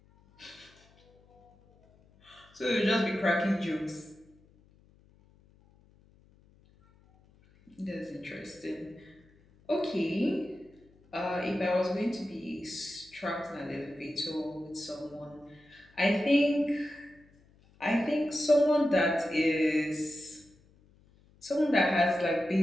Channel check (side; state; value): left; noise; hum, 30 dB below the sound